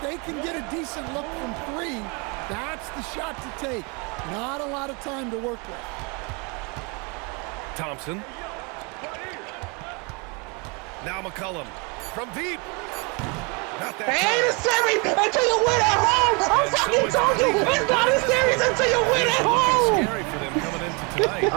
they can get a decent look from 3, that's the shot to take. Not a lot of time to work with. Thompson. Now McCollum from deep. Not that Ain't a series until you win at home. I'm fucking told you, it's not a series until you win at home. Scary for them coming into tonight.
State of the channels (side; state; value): left; quieter; 31.5 dB